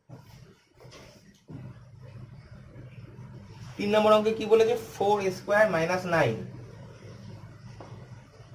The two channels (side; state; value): both; identical; correlation 1.00